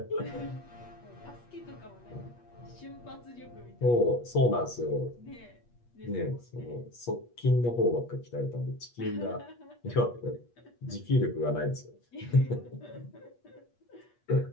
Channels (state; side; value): late; right; 8.4 ms